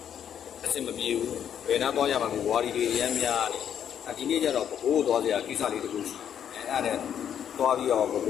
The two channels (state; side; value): quieter; right; 9.1 dB